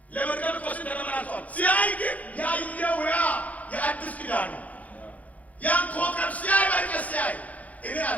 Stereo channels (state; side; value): late; right; 0.072 ms